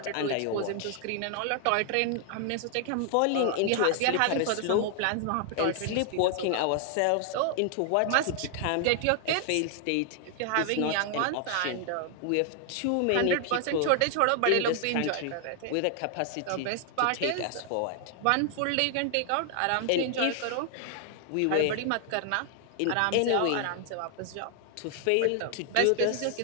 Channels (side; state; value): both; different; correlation 0.00